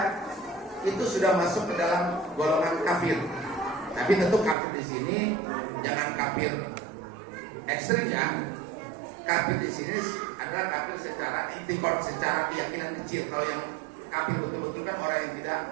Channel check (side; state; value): left; drops out; at 4.5 s